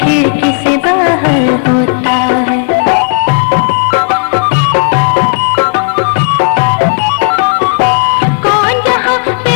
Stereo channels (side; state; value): right; silent; 58 dB below the other